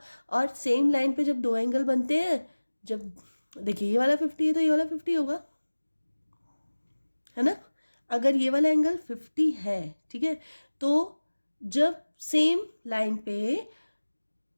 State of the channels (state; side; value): inverted; both; correlation -1.00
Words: और सेम लाइन पे जब दो एंगल बनते हैं, जब देखिए ये वाला 50 है तो ये वाला 50 होगा, है ना। अगर ये वाला एंगल 50 है, ठीक है, तो जब सेम लाइन पे